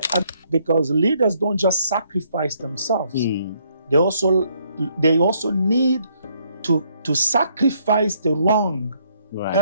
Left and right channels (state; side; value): inverted; both; correlation -0.69